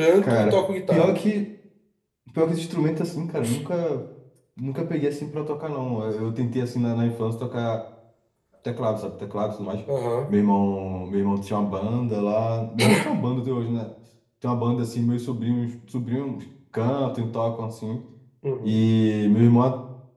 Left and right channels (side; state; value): both; identical; correlation 1.00